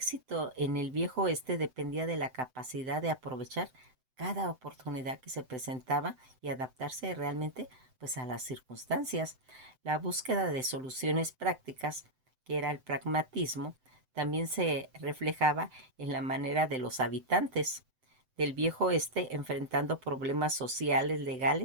en el viejo oeste dependía de la capacidad de aprovechar cada oportunidad que se presentaba y adaptarse realmente pues a las circunstancias. La búsqueda de soluciones prácticas, que era el pragmatismo, también se reflejaba en la manera de los habitantes del viejo oeste enfrentando problemas sociales,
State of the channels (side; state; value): left; late; 7.8 ms